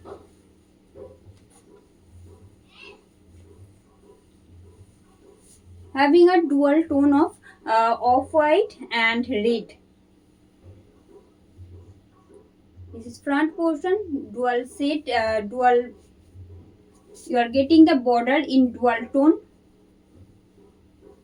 Having a dual tone of off-white and red. This is front portion, dual set, dual. You are getting the border in dual tone.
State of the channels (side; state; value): both; identical; correlation 1.00